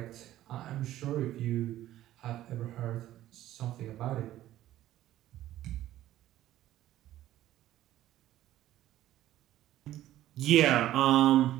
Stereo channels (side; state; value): left; quieter; 13.8 dB